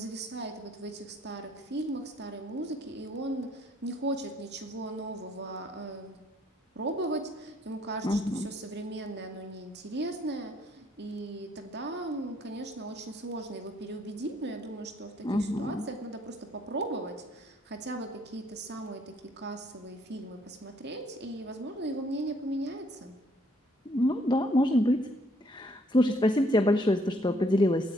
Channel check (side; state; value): both; normal; correlation 0.66